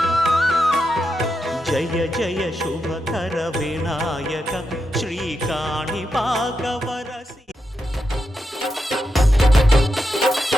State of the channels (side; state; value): both; normal; correlation 0.86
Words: జయ జయ శుభకర వినాయక శ్రీకాణిపాకవర